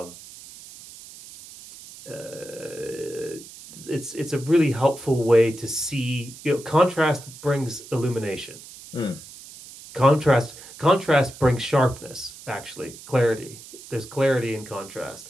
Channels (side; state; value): right; noise; hiss, 17 dB below the sound